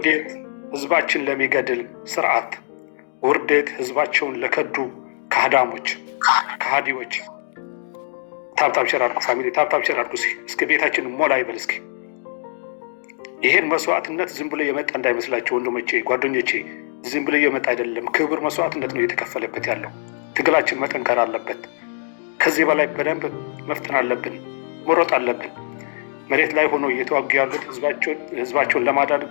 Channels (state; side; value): silent; right; digital silence